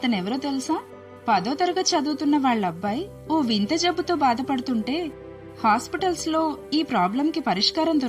తెలుసా? 10వ తరగతి చదువుతున్న వాళ్ళబ్బాయి ఓ వింత జబ్బుతో బాధపడుతుంటే హాస్పిటల్స్ లో ఈ ప్రాబ్లంకి పరిష్కారం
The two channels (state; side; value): identical; both; correlation 1.00